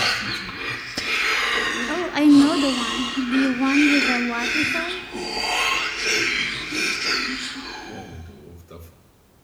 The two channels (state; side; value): identical; both; correlation 1.00